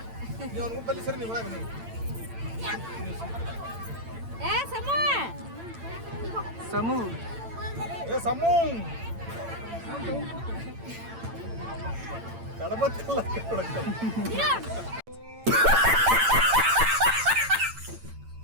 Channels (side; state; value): left; late; 8.9 ms